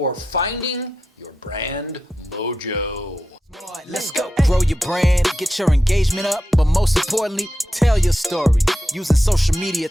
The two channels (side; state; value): both; normal; correlation 0.89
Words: Finding Your Brand Mojo. Let's go. Grow your brand, get your engagement up, but most importantly, tell your story using social media